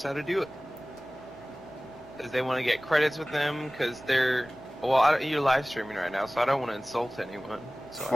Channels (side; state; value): both; normal; correlation 0.98